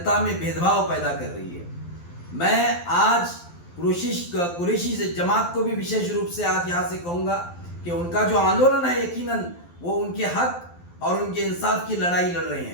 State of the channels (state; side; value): late; right; 12 ms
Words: में भेदभाव पैदा कर रही है। मैं आज कुरैशी जमात को भी विशेष रूप से आज यहाँ से कहूँगा कि उनका जो आंदोलन है, यकीनन वो उनके हक और उनके इंसाफ की लड़ाई लड़ रहे